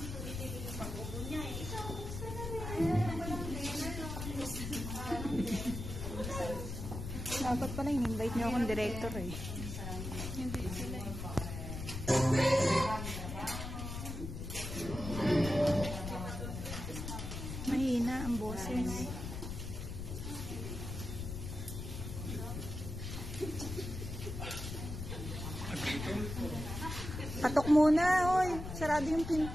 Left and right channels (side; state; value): left; noise; rumble, 6 dB below the sound